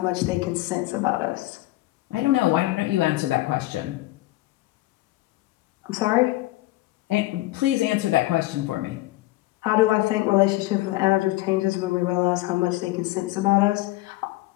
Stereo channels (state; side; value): quieter; right; 18.3 dB